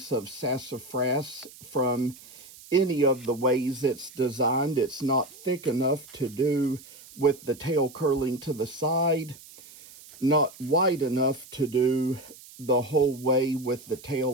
of sassafras from any of the ways it's designed. It's not thick enough to do with the tail curling to the side, not wide enough to do the whole way with the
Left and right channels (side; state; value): right; noise; hiss, 20 dB below the sound